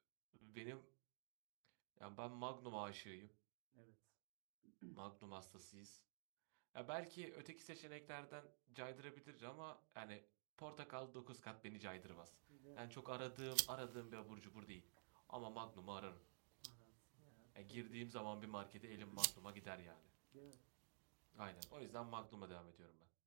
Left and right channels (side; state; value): left; silent; digital silence